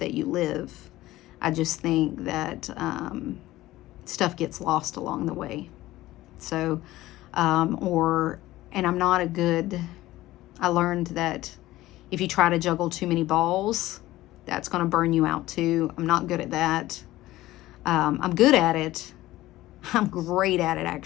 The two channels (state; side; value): quieter; right; 16.6 dB